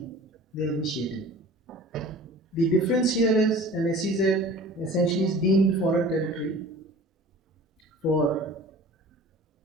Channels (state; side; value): normal; both; correlation 0.43